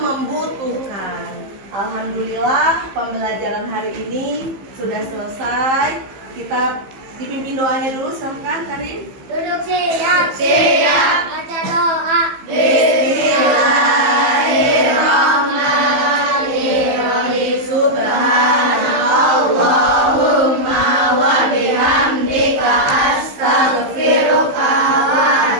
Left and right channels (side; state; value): left; late; 15 ms